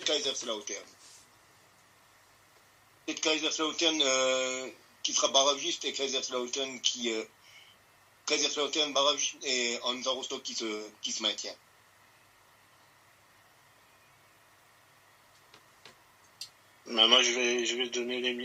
Kaiserslautern. Peut-être Kaiserslautern qui sera barragiste et Kaiserslautern barragiste et Hansa Rostock qui se maintient. Moi, je vais donner les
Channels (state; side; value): identical; both; correlation 1.00